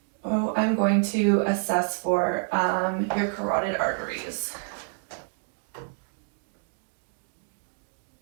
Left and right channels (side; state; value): left; silent; 59 dB below the other